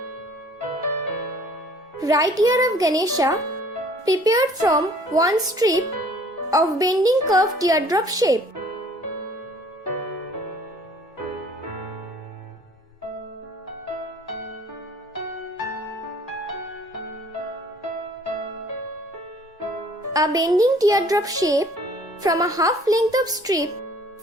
Right ear of Ganesha prepared from 1 strip of bending curved teardrop shape. A bending teardrop shape from a half length of strip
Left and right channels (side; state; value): both; normal; correlation 0.55